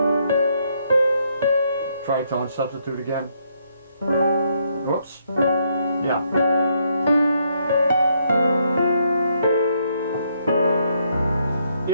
Tritone substitute again. Whoops. Yeah.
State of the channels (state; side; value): inverted; both; correlation -0.74